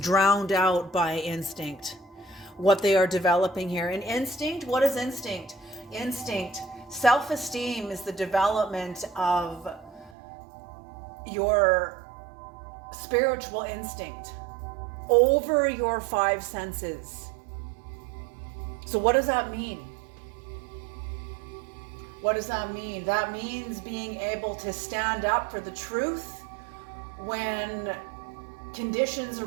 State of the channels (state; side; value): drops out; left; at 10.1 s